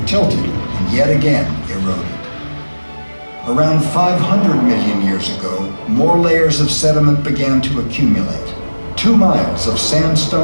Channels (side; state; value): both; inverted; correlation -1.00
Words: tilted and yet again eroded. Around 500 million years ago, more layers of sediment began to accumulate. 2 miles of